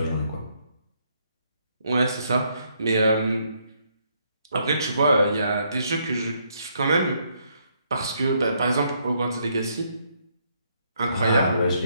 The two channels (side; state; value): both; inverted; correlation -0.72